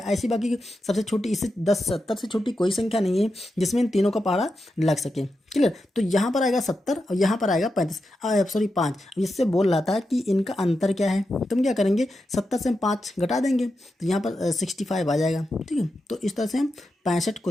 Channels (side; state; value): both; normal; correlation 0.88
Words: ऐसी बाकी सबसे छोटी, इससे 10, 70 से छोटी कोई संख्या नहीं है जिसमें इन तीनों का पहाड़ा लग सके, क्लियर। तो यहाँ पर आएगा 70 और यहाँ पर आएगा 35, सॉरी 5। इससे बोल रहा था कि इनका अंतर क्या है, तो हम क्या करेंगे 70 से हम 5 घटा देंगे तो यहाँ पर 65 आ जाएगा, ठीक है। तो इस तरह से हम 65